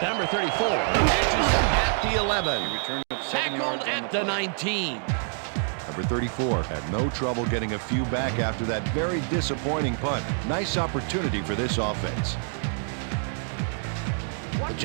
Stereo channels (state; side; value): silent; left; 57 dB below the other